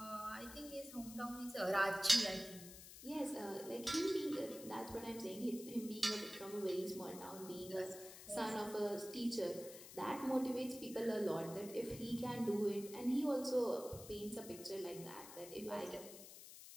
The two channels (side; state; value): left; noise; hiss, 14 dB below the sound